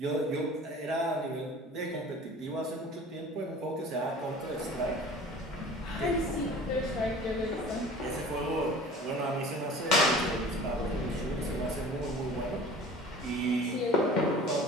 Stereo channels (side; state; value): both; normal; correlation 0.43